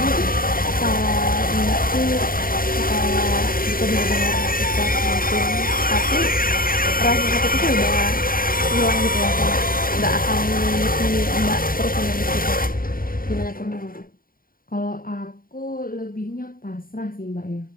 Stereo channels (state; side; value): late; right; 0.42 ms